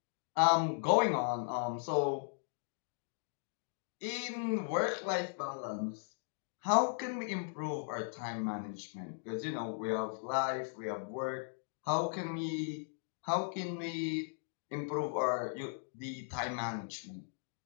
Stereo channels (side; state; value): right; silent; digital silence